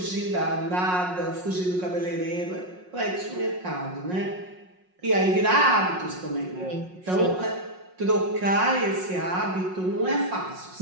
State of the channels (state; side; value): late; left; 5.5 ms